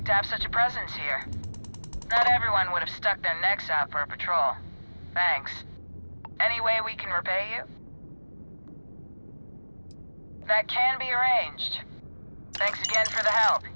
to have such a presence here. Not everyone would have stuck their necks out for a patrol. Thanks. Any way we can repay you? That can be arranged. Thanks again for the help.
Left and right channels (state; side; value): inverted; both; correlation -1.00